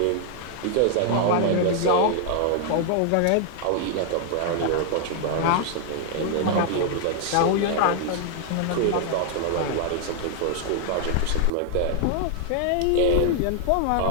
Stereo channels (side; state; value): both; different; correlation 0.00